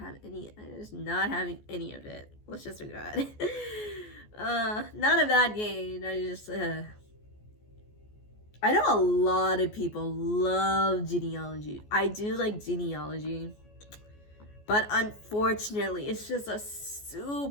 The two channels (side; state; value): right; late; 14 ms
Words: any of it. Let's just do that. None of that game. I know a lot of people love Genealogy. I do like Genealogy. But unfortunately, it's just a